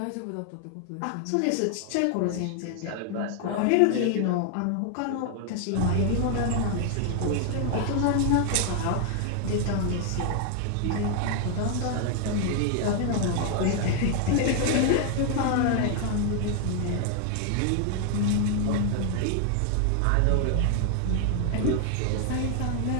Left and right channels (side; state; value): both; different; correlation 0.00